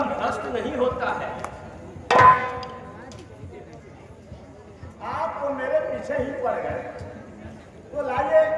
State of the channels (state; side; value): identical; both; correlation 1.00